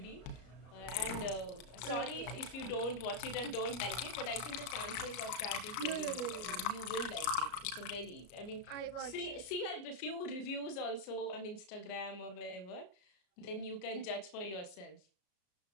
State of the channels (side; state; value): right; late; 33 ms